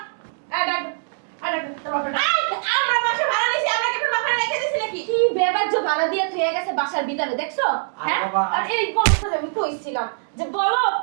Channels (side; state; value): left; silent; digital silence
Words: আমরা বাসা ভাড়া নিছি আমরা কি আপনার বাপরে রেখে দিছি নাকি কি কি বেবাজ্য ভাড়া দিয়ে থয়ে গেছে বাসার ভিতরে দেখছো? হ্যাঁ, বাবা। আর এই বলতে আমি কইছিলাম যে বলো